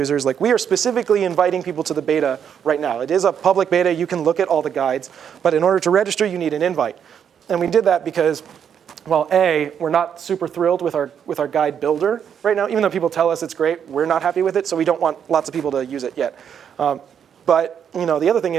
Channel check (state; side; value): quieter; left; 8.1 dB